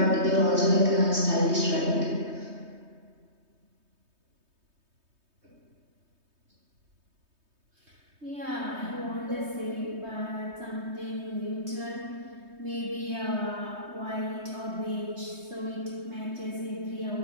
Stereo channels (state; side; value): late; left; 3.2 ms